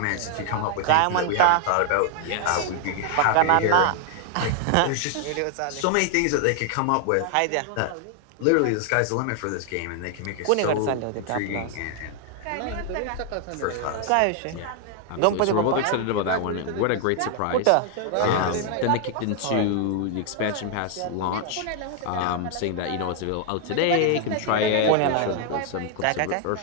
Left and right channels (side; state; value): both; different; correlation 0.00